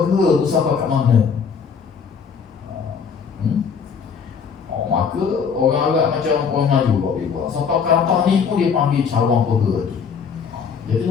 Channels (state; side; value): quieter; right; 6.3 dB